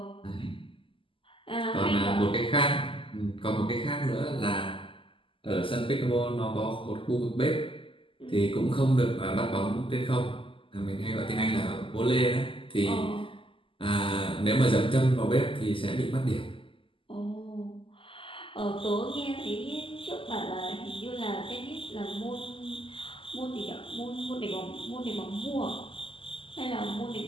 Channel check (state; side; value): late; right; 0.25 ms